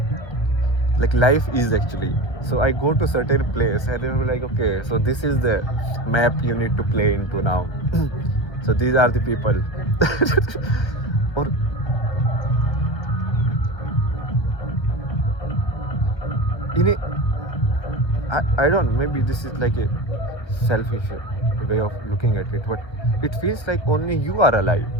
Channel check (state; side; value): late; right; 1.3 ms